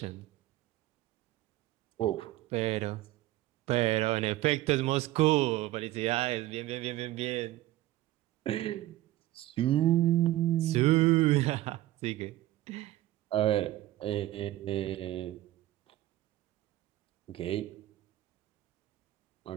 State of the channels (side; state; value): left; quieter; 15.6 dB